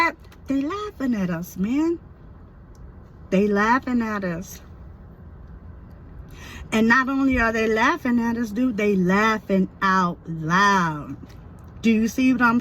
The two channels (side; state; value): both; identical; correlation 1.00